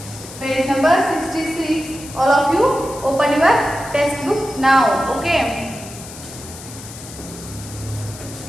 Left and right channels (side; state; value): left; noise; hiss, 15 dB below the sound